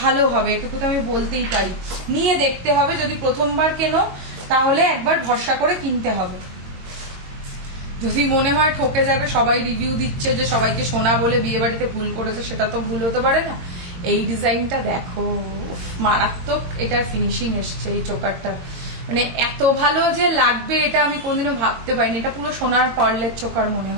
ভালো হবে এটুকু তো আমি বলতেই পারি। নিয়ে দেখতে হবে, যদি প্রথমবার কেনো তাহলে একবার ভরসা করে কিনতে হবে। যদি মনে হয় ঠকে যাবে, সবাই রিভিউ দিচ্ছে যে সবাইকে সোনা বলে বিয়ে বাড়িতে ভুল করেছে, সেটা তো ভুল হতে পারে না। এই ডিজাইনটা দেখো, মারাত্মক এটার ফিনিশিং এসছে এই চোকারটা, মানে এত ভালো যে লাগবে এটা আমি কোনদিনও ভাবতে পারিনি। এটা পুরো সোনার পার্লের চোকার মনে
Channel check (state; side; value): late; left; 22 ms